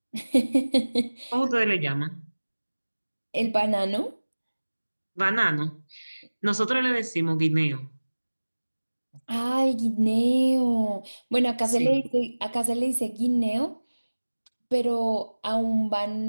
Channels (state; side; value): inverted; both; correlation -1.00